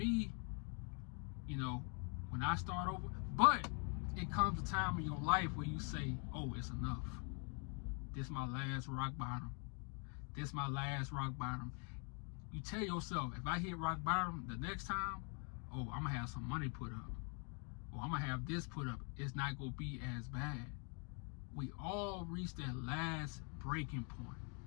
you know, when I start over, but it comes a time in your life where you say, oh, it's enough. This my last rock bottom. This my last rock bottom. You tell yourself, if I hit rock bottom the next time, oh, I'm gonna have some money put up. Or I'm gonna have this put up. It's not gonna be as bad. We all reach that last breaking point.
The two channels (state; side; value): quieter; right; 38.4 dB